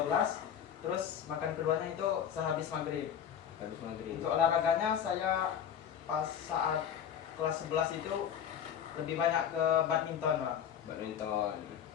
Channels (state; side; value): quieter; right; 8.9 dB